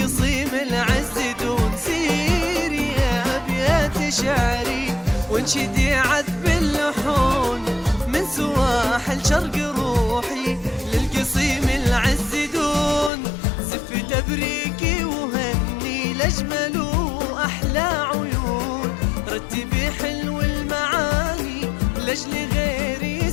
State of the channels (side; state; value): right; drops out; at 13.1 s